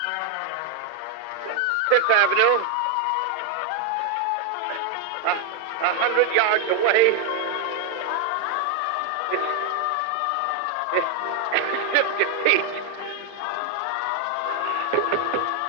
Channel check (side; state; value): both; different; correlation 0.01